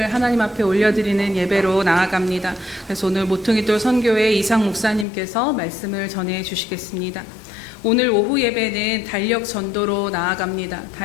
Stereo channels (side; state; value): right; drops out; at 5.1 s